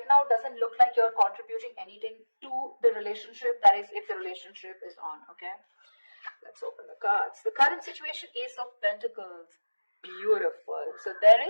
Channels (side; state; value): both; inverted; correlation -1.00